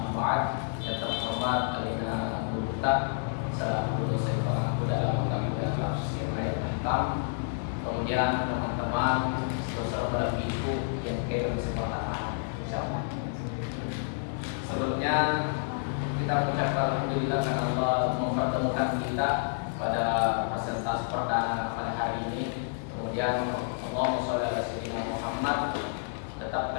ba'd. Yang terhormat Alina Guru Ustaz selaku dosen pengampu dalam lembaga tafsir ayat 6. Kemudian teman-teman saudara ibu yang kirim kesempatan, insyaallah. Sebelumnya kita mengucapkan alhamdulillah karena Allah mempertemukan kita pada presentasi perdana pada hari ini. Kemudian Allahumma sholli ala sayyidina Muhammad tetap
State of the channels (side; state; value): right; silent; digital silence